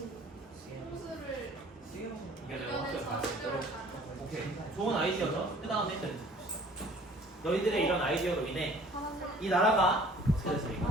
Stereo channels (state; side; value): normal; both; correlation 0.52